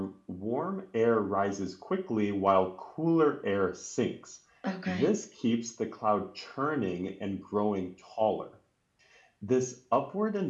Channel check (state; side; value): identical; both; correlation 1.00